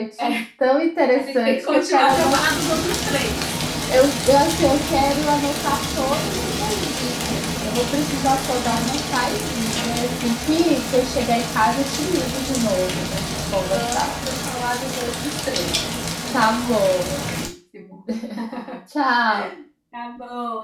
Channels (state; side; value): identical; both; correlation 1.00